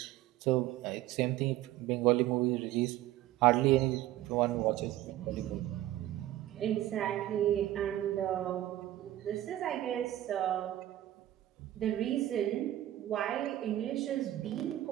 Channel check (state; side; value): quieter; left; 14.2 dB